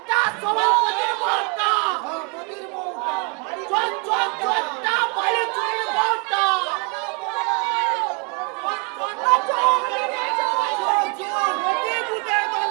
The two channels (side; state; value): left; quieter; 33.1 dB